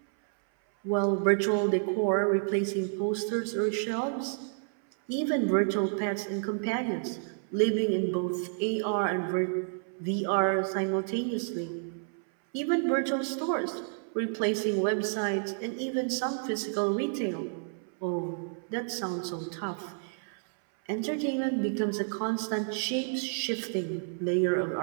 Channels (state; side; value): silent; left; 58 dB below the other